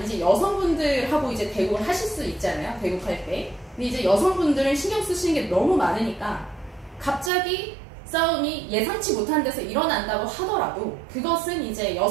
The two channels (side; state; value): left; drops out; at 7.3 s